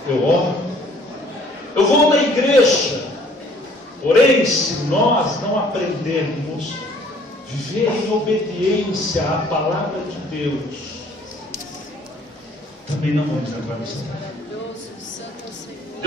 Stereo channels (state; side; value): normal; both; correlation 0.58